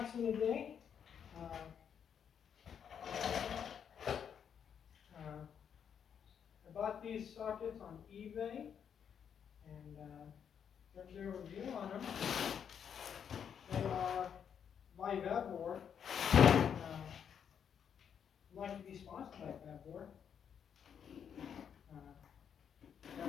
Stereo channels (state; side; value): quieter; right; 7.9 dB